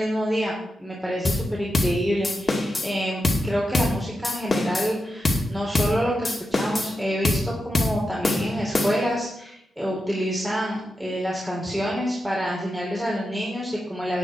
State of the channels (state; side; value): normal; both; correlation 0.89